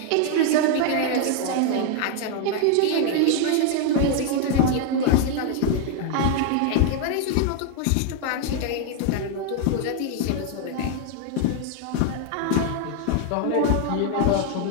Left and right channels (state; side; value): different; both; correlation 0.00